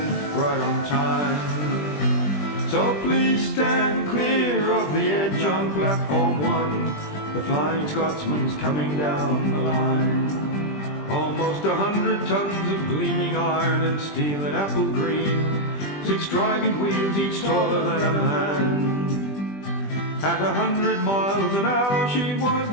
right on time. So please stand clear of the edge on platform 1, the Flying Scotsman's coming down the line. Almost 100 tons of gleaming iron and steel and apple green, 6 driving wheels, each taller than a man. At 100 miles an hour she was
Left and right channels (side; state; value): right; late; 20 ms